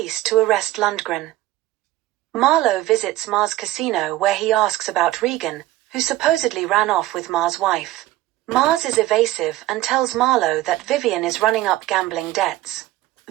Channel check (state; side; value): quieter; left; 16.2 dB